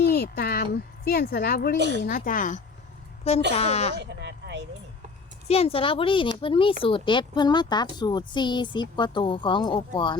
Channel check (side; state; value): right; quieter; 4.4 dB